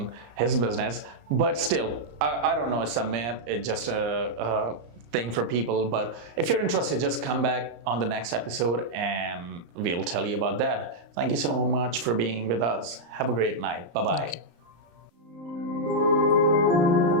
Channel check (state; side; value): late; left; 34 ms